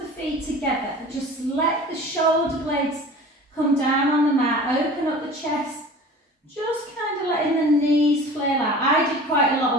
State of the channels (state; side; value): normal; both; correlation 0.41